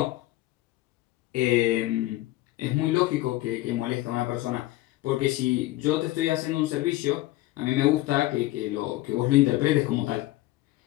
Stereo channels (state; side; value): quieter; right; 17.4 dB